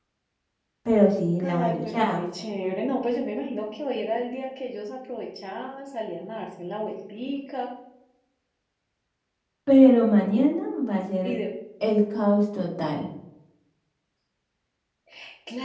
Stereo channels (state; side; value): identical; both; correlation 1.00